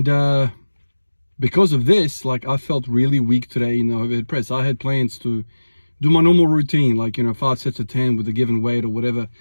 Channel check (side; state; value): both; inverted; correlation -1.00